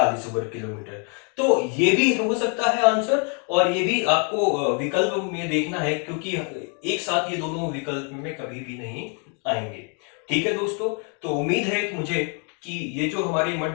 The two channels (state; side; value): quieter; right; 38.7 dB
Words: वर्ग किलोमीटर। तो ये भी हो सकता है आंसर, और ये भी आपको विकल्प में देखना है, क्योंकि एक साथ ये दोनों विकल्प में कभी भी नहीं आएंगे। ठीक है दोस्तों, तो उम्मीद है कि मुझे कि ये जो हमारे